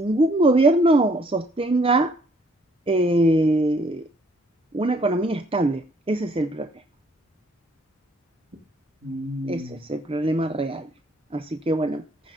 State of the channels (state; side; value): normal; both; correlation 0.63